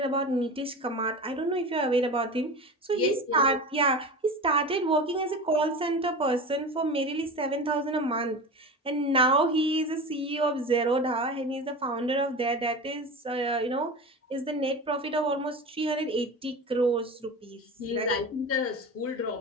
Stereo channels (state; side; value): normal; both; correlation 0.29